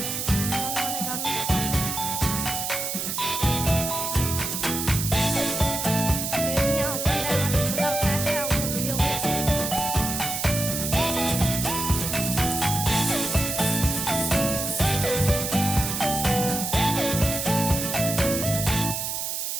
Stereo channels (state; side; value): noise; right; hiss, 3 dB below the sound